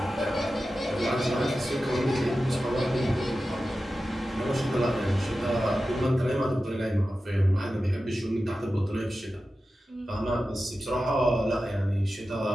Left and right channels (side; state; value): both; normal; correlation 0.93